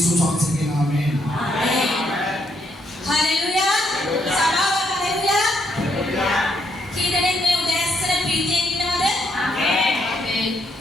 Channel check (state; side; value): normal; both; correlation 0.74